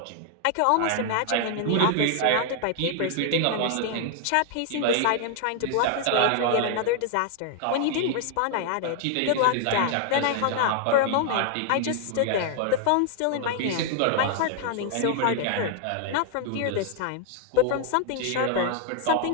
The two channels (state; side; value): different; both; correlation 0.00